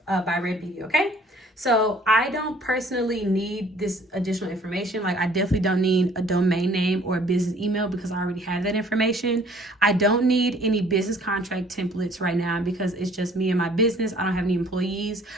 byREDD Beauty, okay? So I don't personally need this additional information. Like I definitely don't need a domain name or a business email because I already have that information. I don't need any business contract templates right now because it's just me and my business. I don't have any employees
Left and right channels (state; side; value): normal; both; correlation 0.56